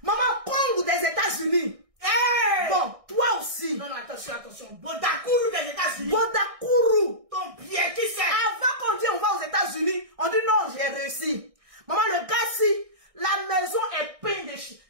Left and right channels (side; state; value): left; late; 1.6 ms